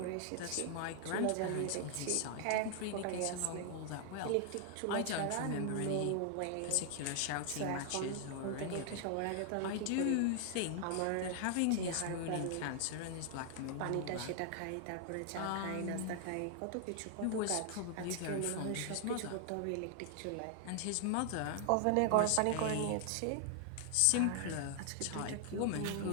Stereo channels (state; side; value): different; both; correlation 0.00